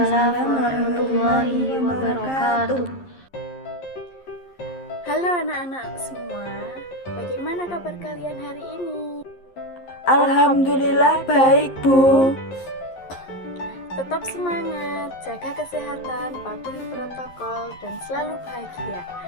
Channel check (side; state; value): right; late; 11 ms